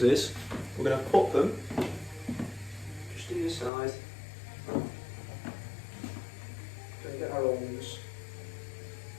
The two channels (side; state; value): right; drops out; at 3.7 s